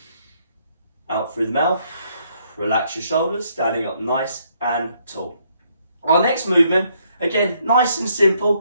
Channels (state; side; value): inverted; both; correlation -0.71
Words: Out through the mouth. Relax your shoulders, standing up nice and tall. Our next movement, again, nice and